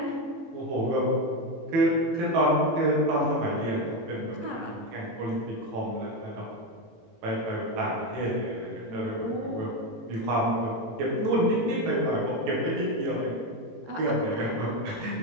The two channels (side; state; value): left; late; 18 ms